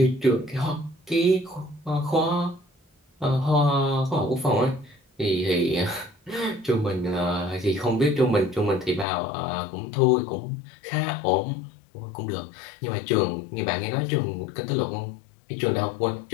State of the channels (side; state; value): right; drops out; at 9.1 s